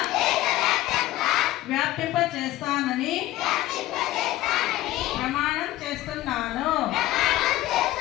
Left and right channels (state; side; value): quieter; right; 15.8 dB